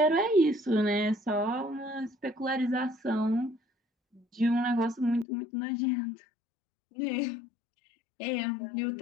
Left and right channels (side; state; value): right; drops out; at 5.2 s